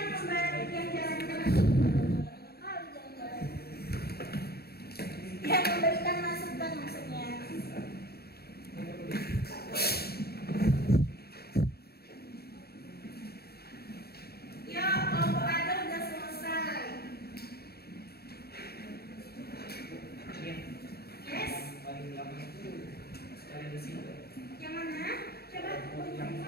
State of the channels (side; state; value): right; late; 0.46 ms